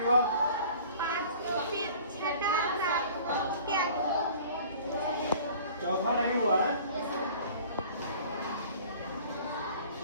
हुआ? चौथा नहीं हुआ है।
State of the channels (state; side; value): inverted; both; correlation -0.47